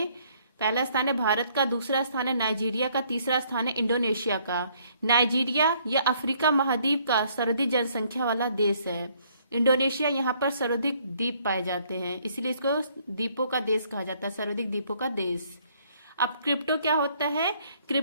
पहला स्थान है भारत का, दूसरा स्थान है नाइजीरिया का, तीसरा स्थान है इंडोनेशिया का। नाइजीरिया या अफ्रीका महाद्वीप का सर्वाधिक जनसंख्या वाला देश है। इंडोनेशिया यहाँ पर सर्वाधिक द्वीप पाए जाते हैं, इसलिए इसको द्वीपों का देश कहा जाता है, सर्वाधिक द्वीपों का देश। अब क्रिप्टो क्या होता है?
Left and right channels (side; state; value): both; inverted; correlation -0.65